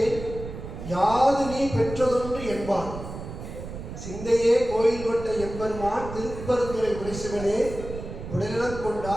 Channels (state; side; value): noise; right; rumble, 10 dB below the sound